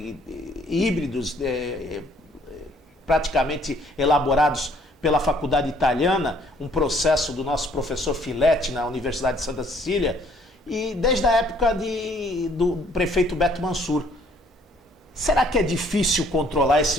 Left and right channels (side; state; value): both; normal; correlation 0.61